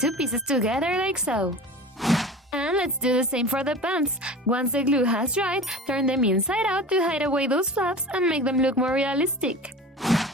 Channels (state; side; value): normal; both; correlation 0.36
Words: pieces together like so. And let's do the same for the pants. Once the glue has dried, turn them inside out to hide away those flaps and make them look more realistic.